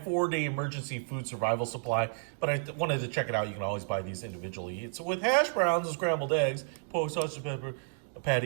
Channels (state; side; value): silent; left; digital silence